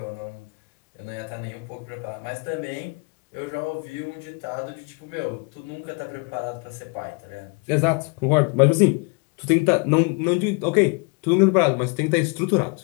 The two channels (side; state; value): right; quieter; 33.0 dB